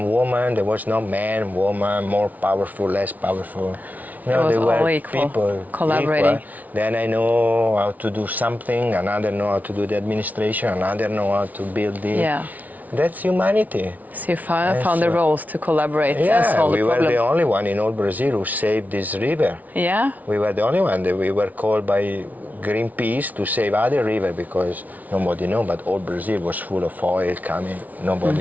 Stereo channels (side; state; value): left; late; 0.075 ms